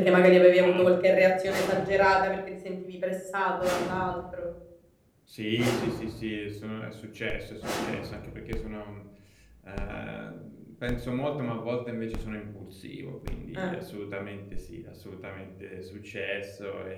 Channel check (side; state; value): both; identical; correlation 1.00